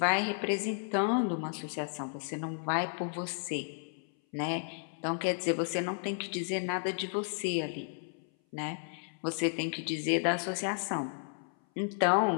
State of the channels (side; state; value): right; silent; 56 dB below the other